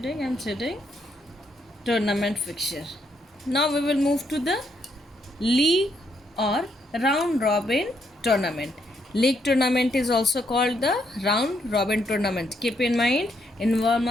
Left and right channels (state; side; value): normal; both; correlation 0.75